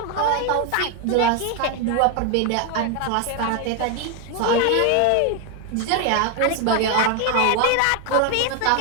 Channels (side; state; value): both; different; correlation 0.01